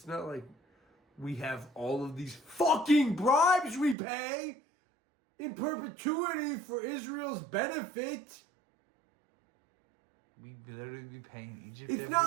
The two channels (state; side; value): drops out; left; at 4.0 s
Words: not like we have all of these fucking bribes we pay in perpetuity for Israel's benefit. we literally be paying Egypt. It's every